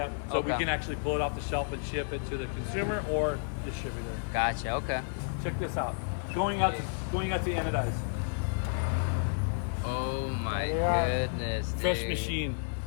So we can actually pull it off the shelf and ship it to the consumer or distributor. Gotcha, okay. Check this out. Going out to anodize. Oh my goodness, dude. Fresh machine.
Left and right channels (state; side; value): silent; right; 57 dB below the other